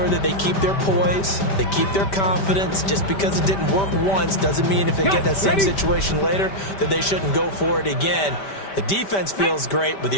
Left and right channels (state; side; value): late; right; 5.1 ms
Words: that they keep their poise, they keep their confidence. Just because it didn't work once doesn't mean if they get that same situation later that they shouldn't go for it again. The defense feels great, but